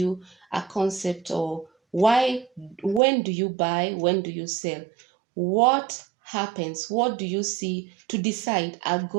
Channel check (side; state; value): left; drops out; at 3.0 s